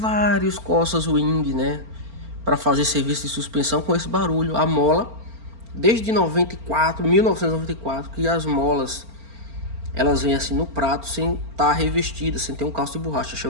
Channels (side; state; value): left; late; 4.4 ms